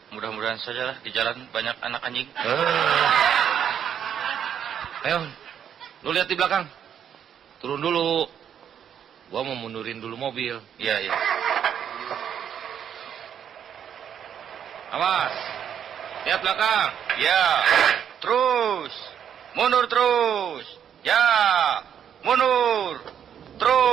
mudah-mudahan saja lah di jalan banyak anak anjing. Ayo, lu lihat di belakang. Turun dulu. Gua mau mundurin dulu mobil. Iya. Awas. Lihat belakang. Ya. Terus. Mundur terus. Ya. Mundur.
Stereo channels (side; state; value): left; quieter; 8.9 dB